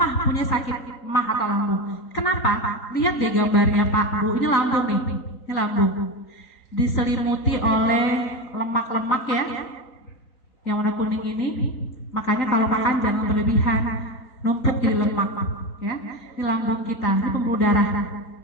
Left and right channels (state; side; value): late; right; 3.9 ms